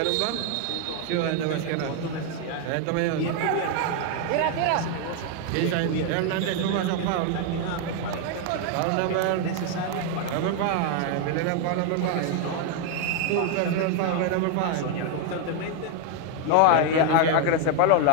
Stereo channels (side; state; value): both; different; correlation 0.01